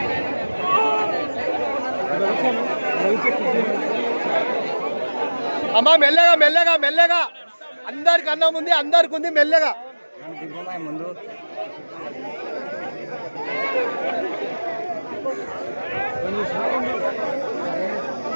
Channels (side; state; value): both; inverted; correlation -1.00